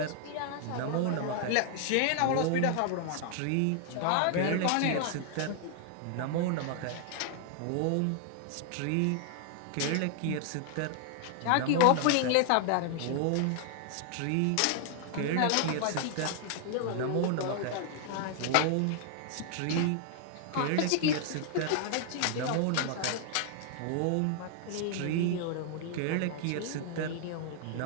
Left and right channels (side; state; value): both; different; correlation 0.00